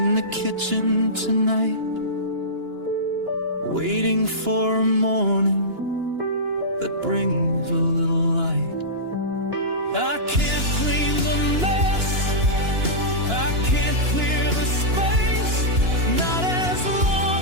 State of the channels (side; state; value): left; late; 2.9 ms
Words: the kitchen tonight, waiting for a morning that brings a little light. I can't clean the mess, I can't clear the space, not as